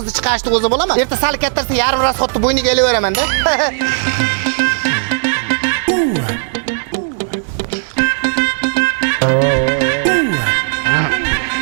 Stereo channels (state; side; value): silent; left; digital silence